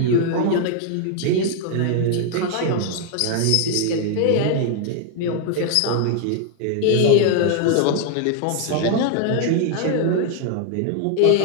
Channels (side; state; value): both; different; correlation 0.00